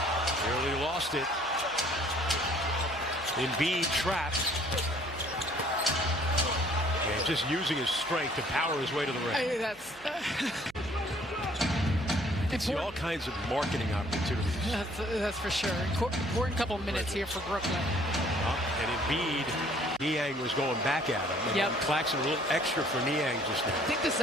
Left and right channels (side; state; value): right; noise; hum, 26 dB below the sound